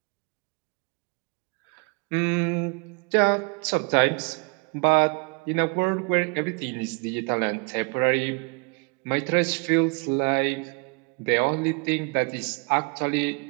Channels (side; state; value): left; quieter; 32.8 dB